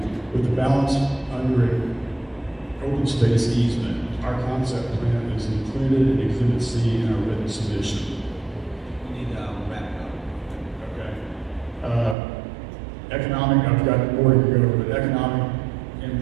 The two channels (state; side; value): drops out; left; at 12.2 s